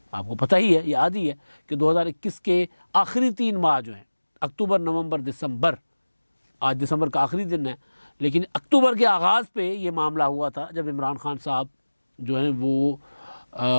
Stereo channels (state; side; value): inverted; both; correlation -1.00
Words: आपको पता ही है, याद ही है कि 2021 के आखिरी 3 माह जो हैं, अक्टूबर, नवंबर, दिसंबर, आज दिसंबर का आखिरी दिन है, लेकिन अक्टूबर के आगाज़ पे ये मामला हुआ था जब इमरान खान साहब जो हैं वो